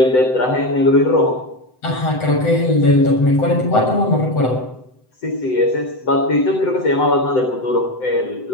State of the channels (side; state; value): right; late; 7.9 ms